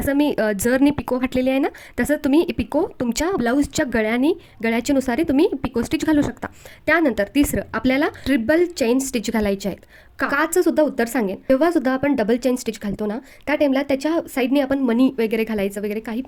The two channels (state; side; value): identical; both; correlation 1.00